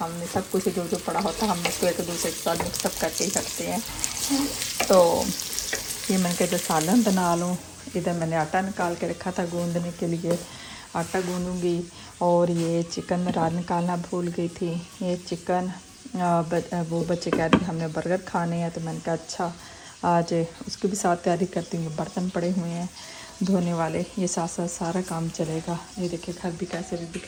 सब कुछ जो पड़ा होता है हम उसको एक दूसरे के साथ मिक्सअप करके ही रखते हैं। तो ये मैंने कहा जो सालन बना लूँ। इधर मैंने आटा निकाल के रखा था गूंदने के लिए, आटा गूंदूँगी। और ये चिकन रात निकालना भूल गई थी। ये चिकन वो बच्चे कह रहे थे हमने बर्गर खाने हैं, तो मैंने कहा अच्छा आज उसकी भी साथ तैयारी करती हूँ। बर्तन पड़े हुए हैं धोने वाले, ये साथ साथ सारा काम चलेगा। ये देखिए घर भी कैसे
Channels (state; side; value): identical; both; correlation 1.00